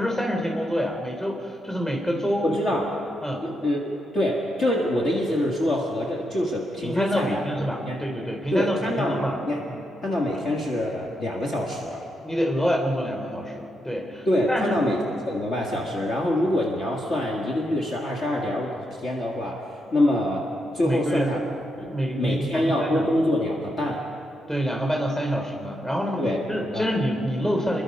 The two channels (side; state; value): both; normal; correlation 0.82